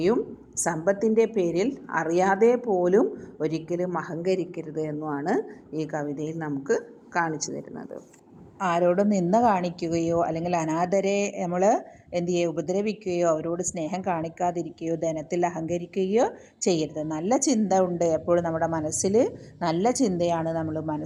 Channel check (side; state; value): both; identical; correlation 1.00